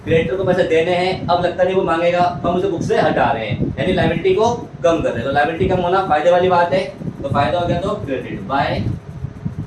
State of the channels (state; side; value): identical; both; correlation 1.00